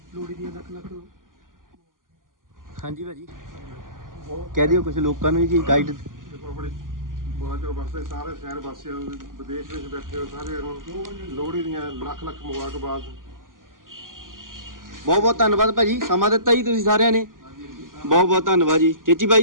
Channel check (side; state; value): left; late; 0.90 ms